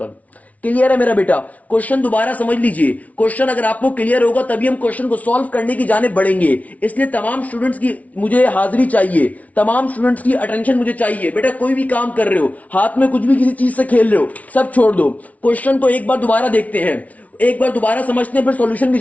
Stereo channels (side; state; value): right; late; 0.069 ms